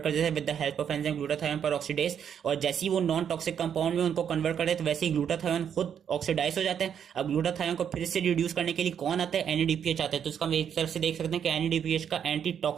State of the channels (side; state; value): left; quieter; 8.3 dB